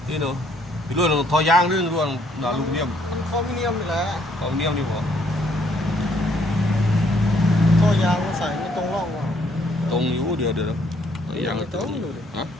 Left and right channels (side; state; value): both; normal; correlation 0.67